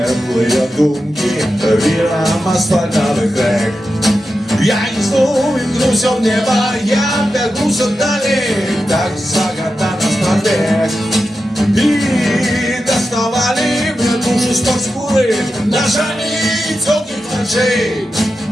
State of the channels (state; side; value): normal; both; correlation 0.90